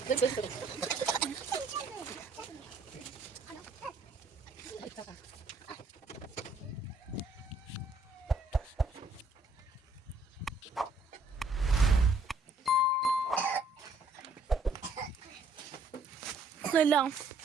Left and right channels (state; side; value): quieter; left; 3.1 dB